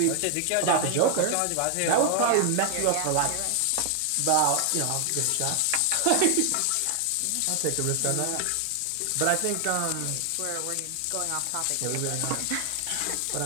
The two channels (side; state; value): both; different; correlation 0.00